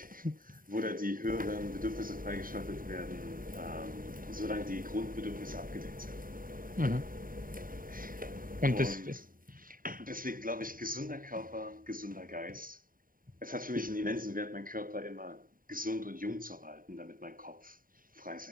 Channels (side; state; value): left; late; 0.41 ms